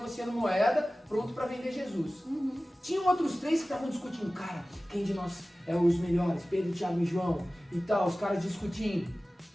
moeda, pronto para vender Jesus. Tinham outros 3 que estavam discutindo. Cara, quem de nós é os melhores? Pedro, Tiago e João. E tal, os caras discutindo.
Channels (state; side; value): normal; both; correlation 0.97